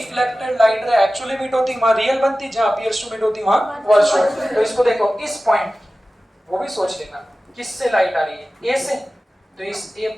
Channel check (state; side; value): normal; both; correlation 0.96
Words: light ray actually meet होती वहां रियल बनती, जहां अपीयर्स टू मीट होती वहां वर्चुअल। तो इसको देखो, इस पॉइंट, वो भी सोच लेना किससे लाइट आ रही है, ए से, तो इस ए